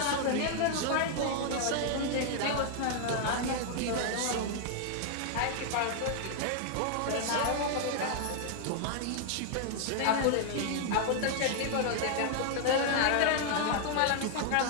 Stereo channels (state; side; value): different; both; correlation 0.00